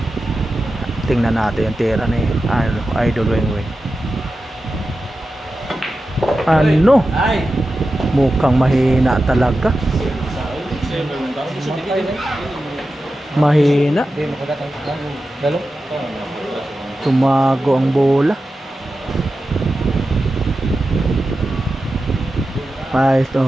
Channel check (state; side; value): normal; both; correlation 0.92